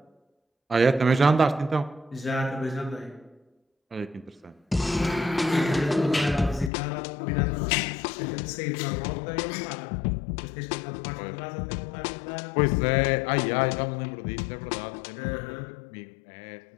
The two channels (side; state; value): right; drops out; at 6.7 s